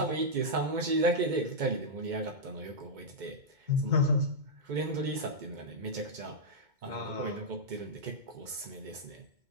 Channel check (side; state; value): left; late; 2.2 ms